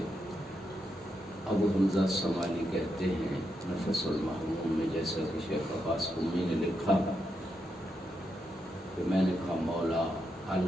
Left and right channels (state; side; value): normal; both; correlation 0.83